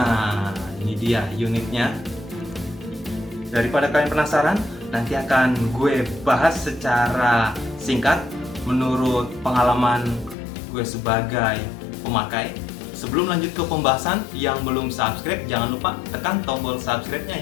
ini dia unitnya. Daripada kalian penasaran, nanti akan gue bahas secara singkat menurut pengalaman gue sebagai pemakai. Sebelum lanjut ke pembahasan, yang belum subscribe jangan lupa tekan tombol subscribe-nya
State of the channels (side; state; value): right; drops out; at 10.4 s